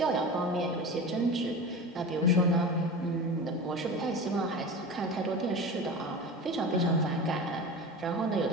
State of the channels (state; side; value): normal; both; correlation 0.30